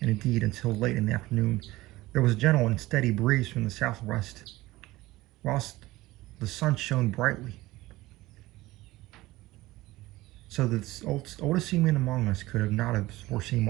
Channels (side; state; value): left; quieter; 18.5 dB